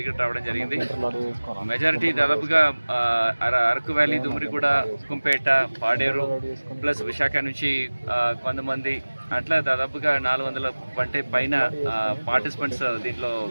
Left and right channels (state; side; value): inverted; both; correlation -1.00